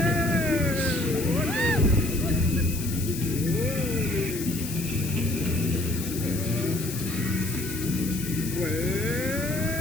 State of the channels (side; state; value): left; noise; hiss, 9 dB below the sound